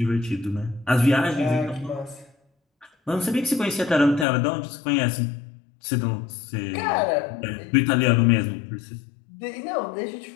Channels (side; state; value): right; drops out; at 4.2 s